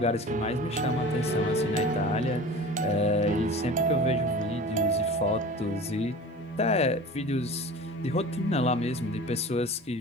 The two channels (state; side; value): normal; both; correlation 0.38